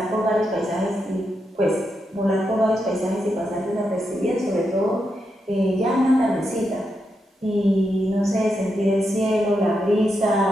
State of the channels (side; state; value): both; normal; correlation 0.84